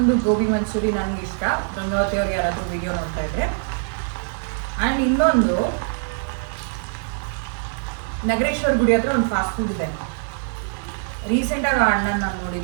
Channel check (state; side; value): silent; left; 63 dB below the other